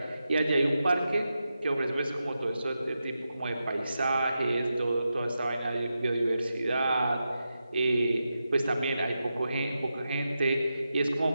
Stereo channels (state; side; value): inverted; both; correlation -0.89